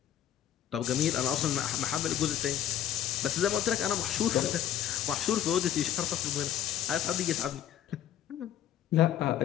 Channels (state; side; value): quieter; right; 10.8 dB